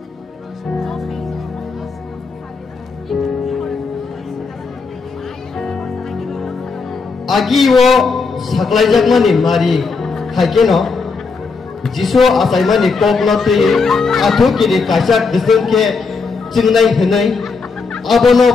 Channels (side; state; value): right; quieter; 4.6 dB